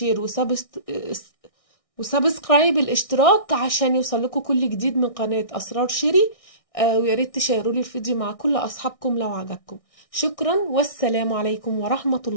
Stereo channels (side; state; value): right; late; 1.6 ms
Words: وسبسكرايب الاشتراك عشان يوصل لكم كل جديد من قناة أسرار شيري. ويا ريت تشيروا لي الفيديو مع كل أصحابكم لو عجبكم. شكرا، والسلام عليكم ورحمة